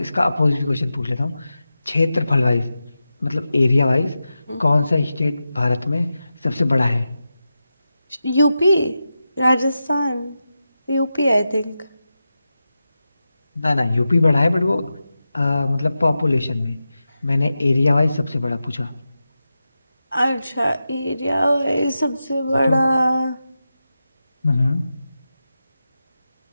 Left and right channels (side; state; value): both; inverted; correlation -0.91